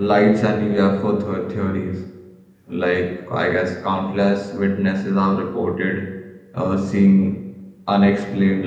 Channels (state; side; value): identical; both; correlation 1.00